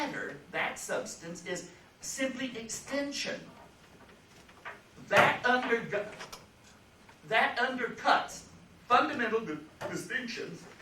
that substance, is simply extension. That undercuts fundamental distinctions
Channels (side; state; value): both; identical; correlation 1.00